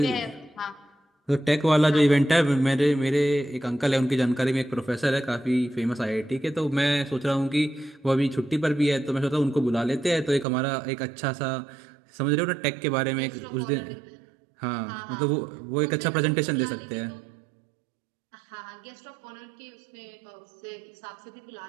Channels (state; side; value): drops out; left; at 10.5 s